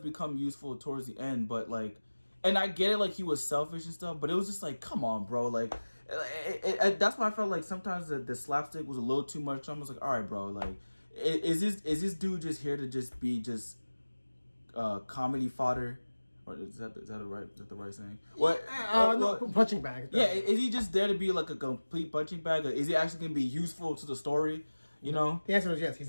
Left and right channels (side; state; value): both; inverted; correlation -1.00